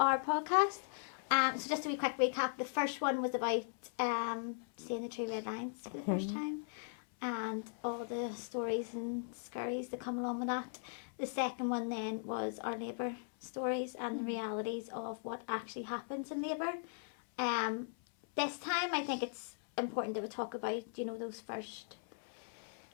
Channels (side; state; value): right; silent; 52 dB below the other